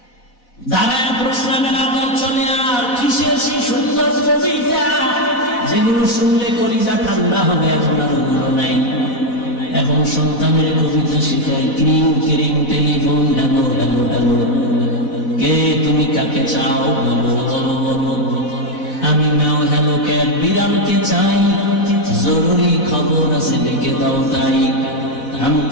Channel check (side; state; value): right; late; 4.1 ms